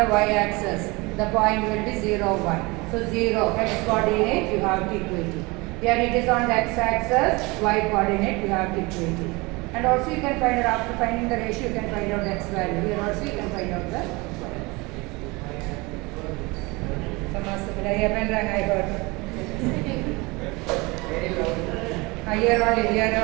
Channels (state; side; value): quieter; left; 24.8 dB